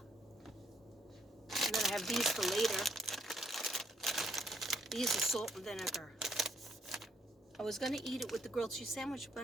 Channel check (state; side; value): normal; both; correlation 0.72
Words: And then I have these for later. These are salt and vinegar. I was going to eat it with the grilled cheese sandwich,